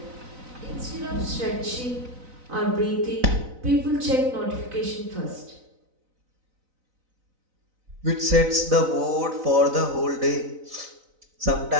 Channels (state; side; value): late; left; 4.0 ms